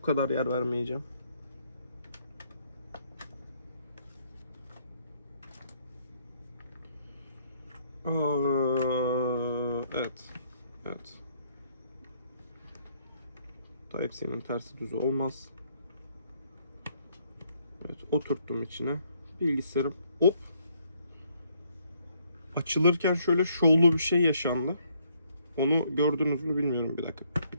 kadar yer vermeyeceğim. Evet. Evet. Type-C'nin tersi düzü olmaz. Evet, oturttum içine. Bilgisayarım hop. Açılırken şöyle şovlu bir şey yaşandı. Onu gördünüz mü bilmiyorum. Bir dakika. Bir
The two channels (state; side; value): inverted; both; correlation -0.69